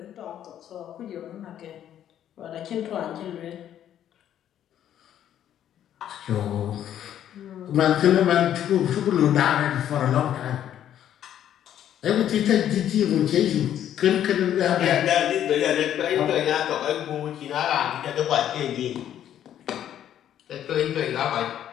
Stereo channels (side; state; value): right; quieter; 10.7 dB